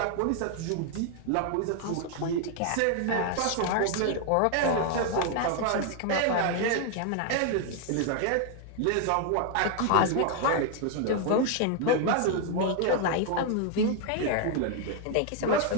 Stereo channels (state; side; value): different; both; correlation 0.00